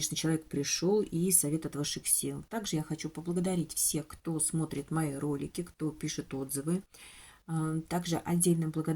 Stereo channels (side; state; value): both; identical; correlation 1.00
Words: человек пришел и совет от высших сил. Также я хочу поблагодарить всех, кто смотрит мои ролики, кто пишет отзывы. Также отдельная